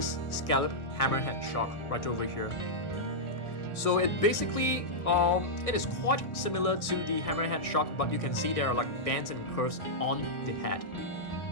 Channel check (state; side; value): late; right; 1.6 ms